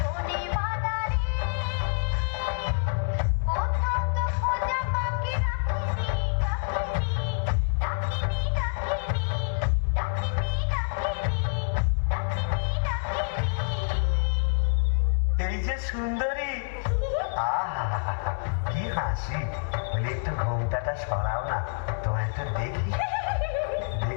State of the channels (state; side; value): silent; right; digital silence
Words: বাদাড়ি, কোথাও তো খোঁজা বাকি রাখিনি। ডাকিনি ডাকিনি ডাকিনি ডাকিনি ডাকিনি ডাকিনি। এই যে সুন্দরী, আহা কি হাসি, বলে একটু ঘোমটাটা সরাও না, তোমায় একটু দেখি।